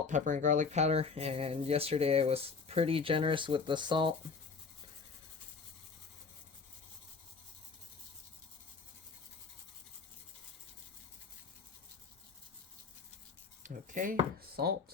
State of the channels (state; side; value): quieter; right; 4.9 dB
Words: pepper, and garlic powder. And yesterday I was pretty generous with the salt. Okay,